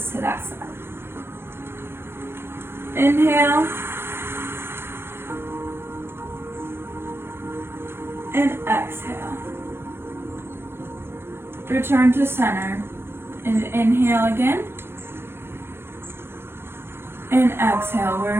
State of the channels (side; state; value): left; late; 0.11 ms